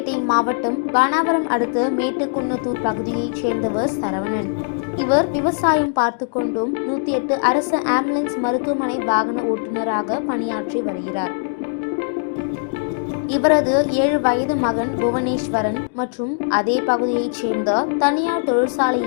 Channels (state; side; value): silent; right; digital silence